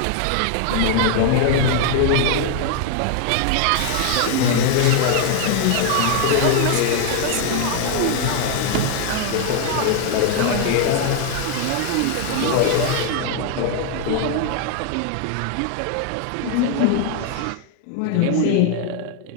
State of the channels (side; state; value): both; different; correlation 0.00